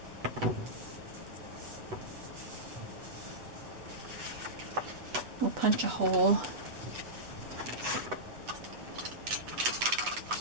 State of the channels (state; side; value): late; left; 8.1 ms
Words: We'll punch a hole.